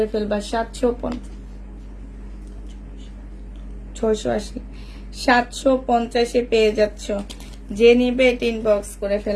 ফেলবা। 750-এ পেয়ে যাচ্ছ। যে নিবে এটা ইনবক্স করে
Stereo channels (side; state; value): both; identical; correlation 1.00